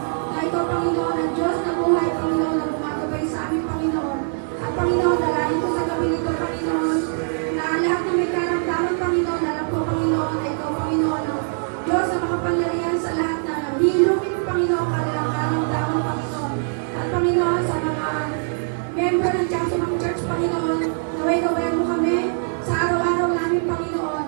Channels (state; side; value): silent; left; 59 dB below the other